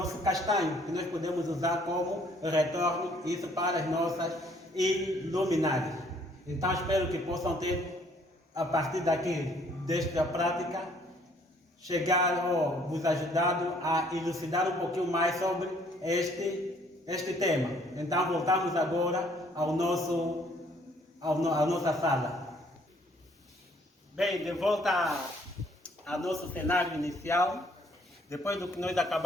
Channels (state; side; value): normal; both; correlation 0.62